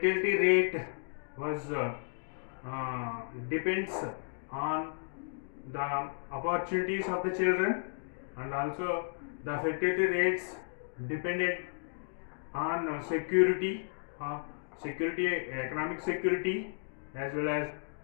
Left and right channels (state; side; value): silent; right; digital silence